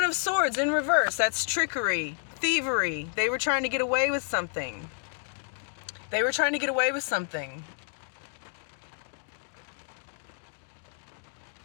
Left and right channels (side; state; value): right; silent; digital silence